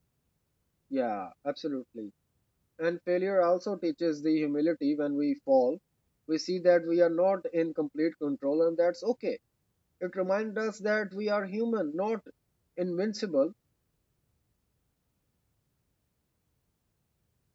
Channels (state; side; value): identical; both; correlation 1.00